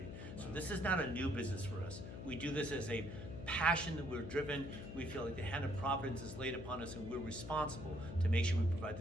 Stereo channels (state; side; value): noise; left; hum, 9 dB below the sound